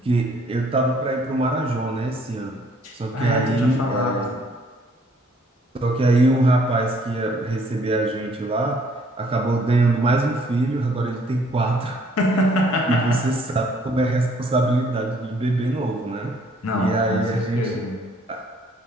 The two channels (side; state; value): both; normal; correlation 0.62